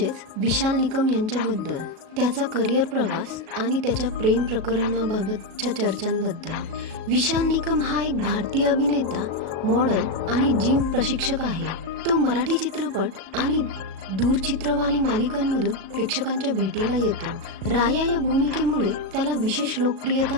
विशाल निकम यांच्याबद्दल, त्याचा करिअर प्रवास आणि त्याच्या प्रेम प्रकरणाबाबतच्या चर्चांबद्दल। विशाल निकम हा एक भारतीय अभिनेता, मॉडेल आणि जिम प्रशिक्षक आहे। तो मराठी चित्रपट आणि दूरचित्रवाणी मालिकांमधून प्रेक्षकांच्या भेटीला येतो। राया या भूमिकेमुळे त्याला विशेष लोकप्रियता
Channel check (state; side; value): late; left; 37 ms